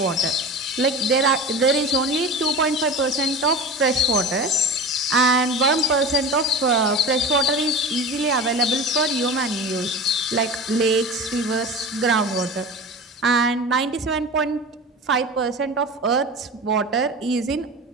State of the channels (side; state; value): both; normal; correlation 0.32